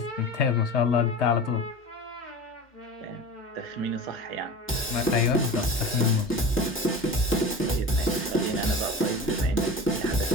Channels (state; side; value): normal; both; correlation 0.33